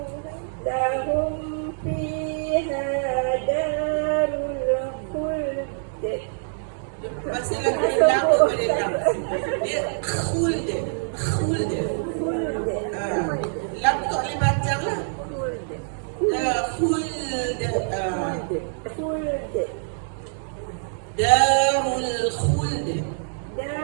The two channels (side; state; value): left; silent; 62 dB below the other